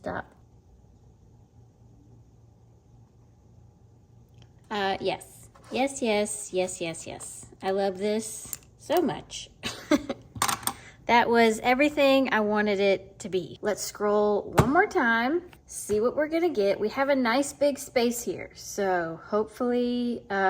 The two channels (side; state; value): both; identical; correlation 1.00